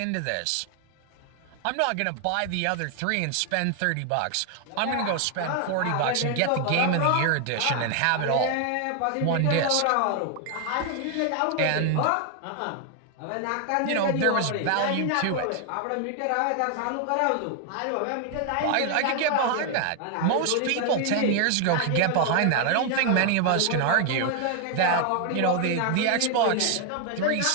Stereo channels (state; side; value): different; both; correlation 0.00